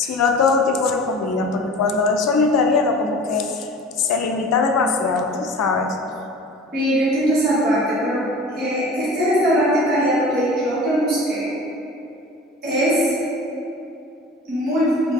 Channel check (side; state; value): both; normal; correlation 0.39